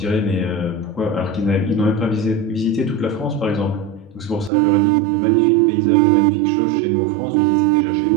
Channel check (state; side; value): drops out; left; at 4.5 s